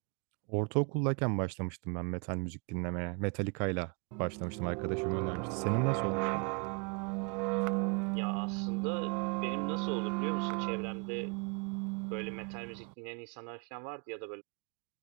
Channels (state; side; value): quieter; left; 35.4 dB